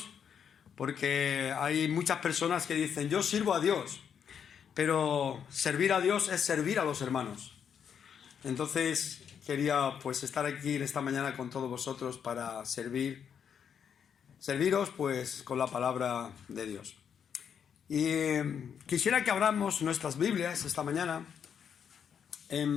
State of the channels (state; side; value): quieter; right; 7.7 dB